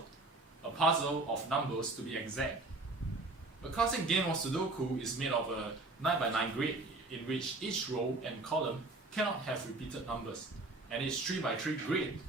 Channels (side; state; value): left; quieter; 3.1 dB